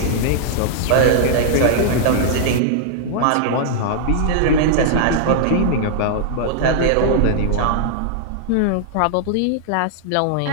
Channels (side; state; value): both; different; correlation -0.01